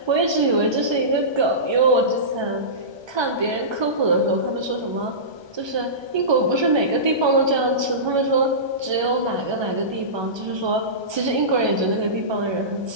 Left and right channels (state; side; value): late; left; 1.2 ms